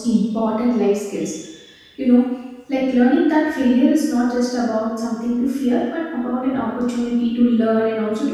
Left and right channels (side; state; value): both; identical; correlation 1.00